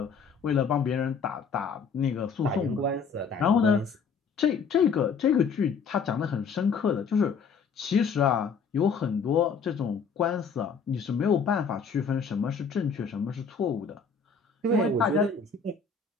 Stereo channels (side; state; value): right; quieter; 5.6 dB